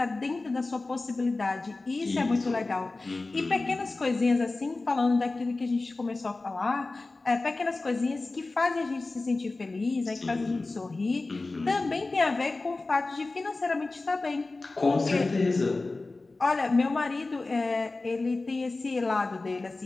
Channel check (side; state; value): right; quieter; 3.4 dB